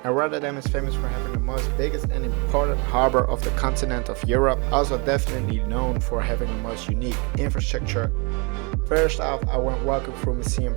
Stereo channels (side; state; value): left; quieter; 31.3 dB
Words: and Rotterdam is famous for having the most biggest and important harbor of the continent of Europe, also definitely known for having the most unique infrastructure. First off, I went walking through Museum